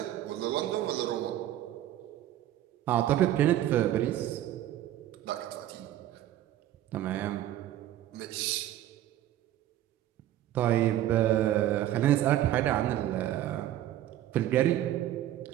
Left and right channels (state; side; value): quieter; left; 12.9 dB